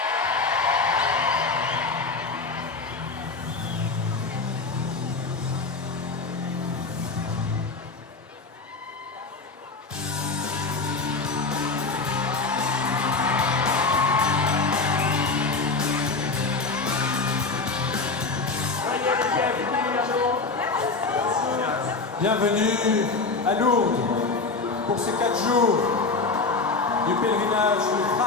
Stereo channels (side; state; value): right; quieter; 4.0 dB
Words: Bienvenue à Lourdes pour ces 4 jours du pèlerinage du